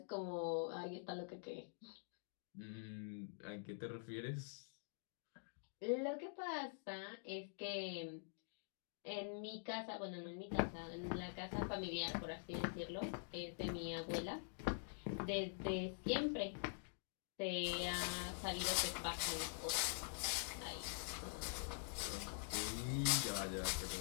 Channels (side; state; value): right; silent; digital silence